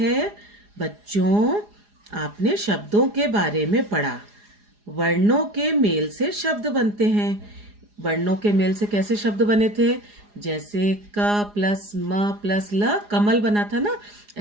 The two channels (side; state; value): left; late; 4.9 ms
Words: बच्चों, आपने शब्दों के बारे में पढ़ा। वर्णों के मेल से शब्द बनते हैं। वर्णों के मेल से कैसे शब्द बने थे? जैसे क प्लस म प्लस ल, कमल बना था ना।